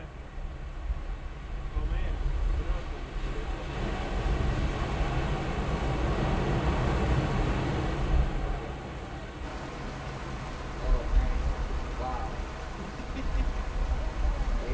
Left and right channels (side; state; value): both; identical; correlation 1.00